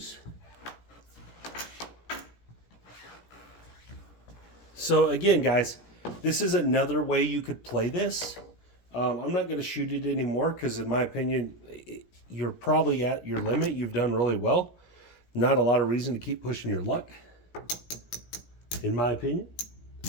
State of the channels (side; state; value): right; late; 17 ms